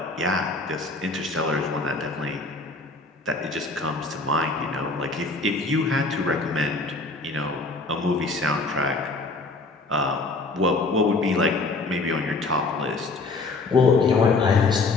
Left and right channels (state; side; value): quieter; right; 3.5 dB